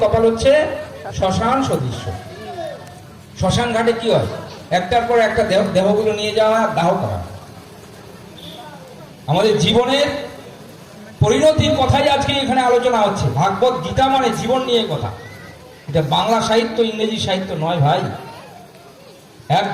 কপাল হচ্ছে শ্মশান সদৃশ্য। শ্মশান ঘাটে কি হয়? একটার পর একটা দেহগুলো নিয়ে যাওয়া, দাহ করা। আমাদের জীবনের পরিণতির কথাই আজকে এখানে আলোচনা হচ্ছে। ভাগবত গীতা মানে জীবন নিয়ে কথা। এটা বাংলা সাহিত্য, ইংরেজি সাহিত্য নয় ভাই,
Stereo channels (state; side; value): identical; both; correlation 1.00